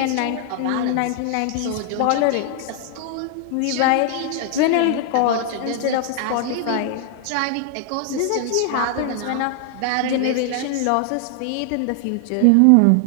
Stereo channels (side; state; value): both; different; correlation 0.00